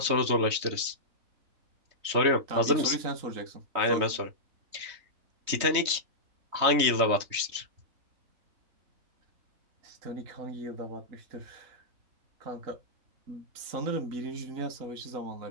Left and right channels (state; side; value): late; left; 3.2 ms